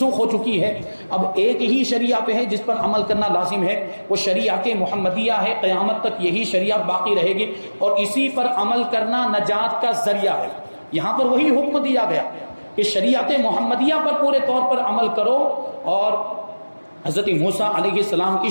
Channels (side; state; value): both; inverted; correlation -1.00